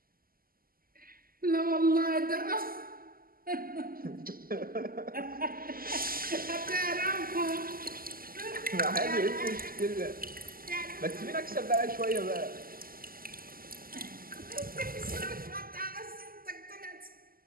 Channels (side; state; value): left; late; 0.42 ms